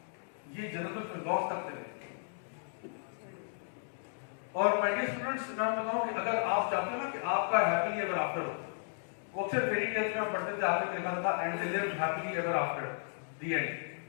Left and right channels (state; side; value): silent; right; digital silence